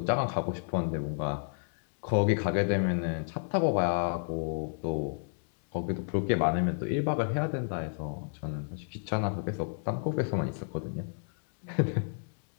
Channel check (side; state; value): right; silent; digital silence